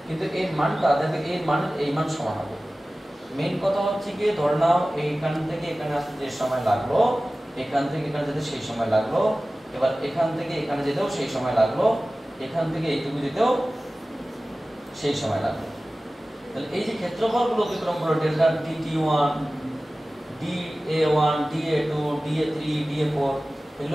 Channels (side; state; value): both; normal; correlation 0.97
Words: কিন্তু এর মানটা দেখবে এই মান সমান হবে। মেইন কথা হচ্ছে কি, ধরে নাও এইখান থেকে এখানে আসতে যে সময় লাগলো, এখান থেকে এখানে যেতে সেই সময় লাগলো, এবার এখান থেকে এখানে যেতেও সেই সময় লাগলো, এখান থেকে এইটুকু যেতেও সেই সময় লাগলো। তাহলে এই যে ক্ষেত্রফলগুলো অতিক্রম করলো, delta DT1, DA1, DA2, DA3, DA4,